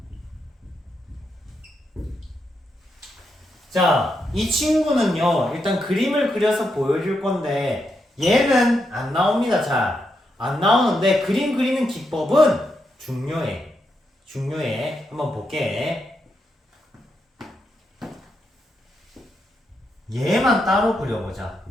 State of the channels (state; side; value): normal; both; correlation 0.83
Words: 자, 이 친구는요. 일단 그림을 그려서 보여줄 건데 얘는 안 나옵니다. 잘 안 나오는데 그림 그리는 기법은 중요해. 중요해. 한번 볼게. 얘만 따로 그려보자.